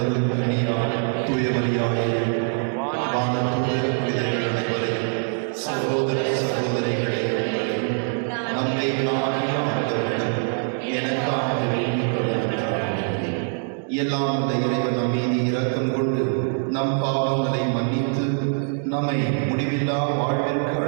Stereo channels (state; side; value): silent; left; 63 dB below the other